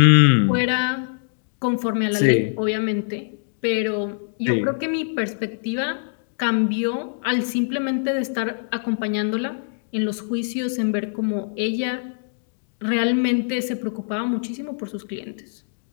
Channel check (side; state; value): right; silent; digital silence